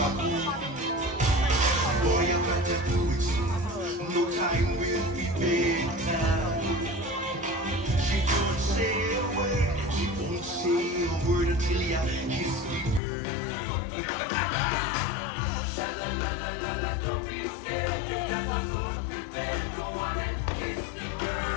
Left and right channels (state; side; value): drops out; right; at 13.0 s